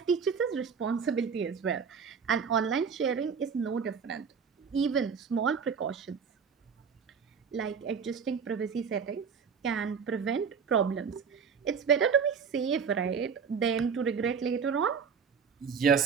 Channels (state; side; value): quieter; left; 6.3 dB